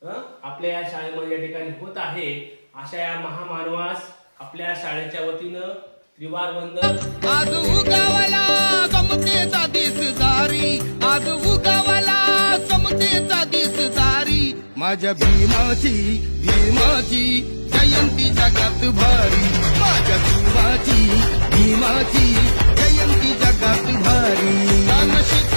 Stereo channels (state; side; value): inverted; both; correlation -1.00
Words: आपल्या या शाळेमध्ये या ठिकाणी होत आहे। अशा या महामानवास आपल्या शाळेच्या वतीनं त्रिवार वंदन। आज उगावला समतेचा दिसदारी, आज उगावला समतेचा दिसदारी, माझ्या भीमाची जयंती जगात भारी, माझ्या भीमाची जयंती जगात भारी।